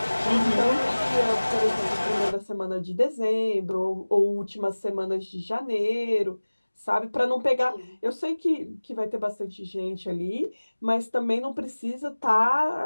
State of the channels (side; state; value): both; inverted; correlation -1.00